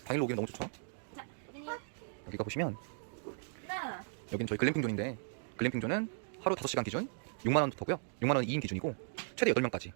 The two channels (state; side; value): silent; left; digital silence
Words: 당일로 오기는 너무 좋죠. 여기가 보시면 여기는 저희 글램핑존인데 글램핑존은 하루 5시간 기준 6만원부터고요 6만원 2인 기준이고 최대 8명까지